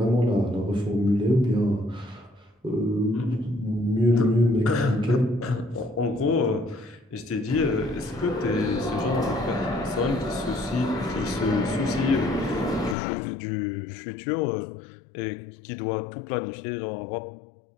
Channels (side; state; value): right; drops out; at 13.0 s